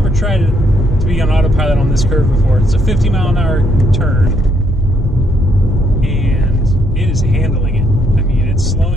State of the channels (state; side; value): normal; both; correlation 0.72